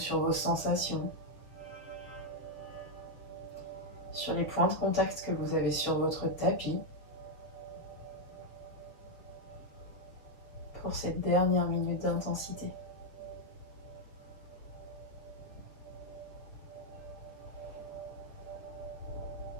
vos sensations, sur les points de contact que vous avez sur votre tapis pour cette dernière minute d'intensité.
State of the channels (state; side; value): late; right; 7.0 ms